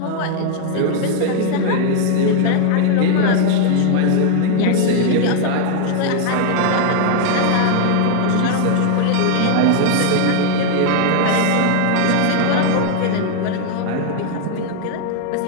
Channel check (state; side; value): different; both; correlation 0.00